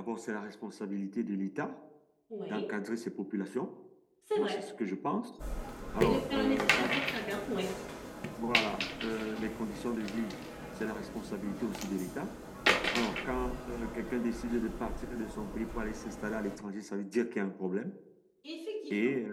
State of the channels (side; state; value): both; identical; correlation 1.00